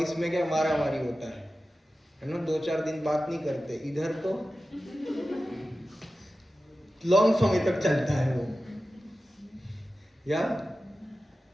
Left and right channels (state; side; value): normal; both; correlation 0.94